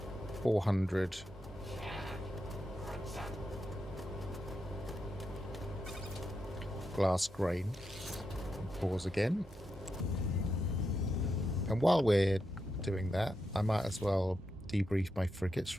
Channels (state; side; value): normal; both; correlation 0.86